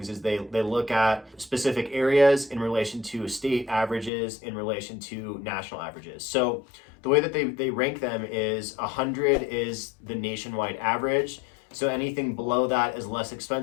is they look at specific areas in relation to state averages, in relation to national averages. So the way that they rank them is 100 is the nationwide average. So anything below that is less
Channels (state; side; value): drops out; right; at 4.1 s